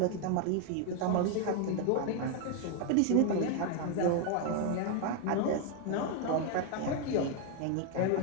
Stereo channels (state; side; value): different; both; correlation 0.01